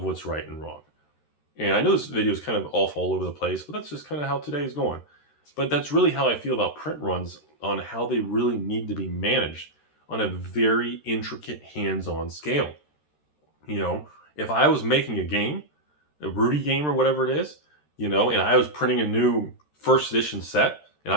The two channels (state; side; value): late; right; 13 ms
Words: what's right and wrong. And I know this video is kind of off all over the place, but that's just kind of how today is going. But that's really how I feel about print runs, on how they really need to be managed on a very intricate hands-on scale. You know, if I was making a game, a Rudy game or whatever it is, you know, and I was printing a new first edition set, and